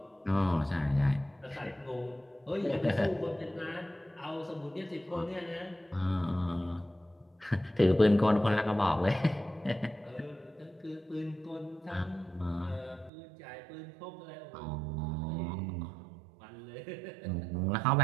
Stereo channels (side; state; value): left; drops out; at 13.1 s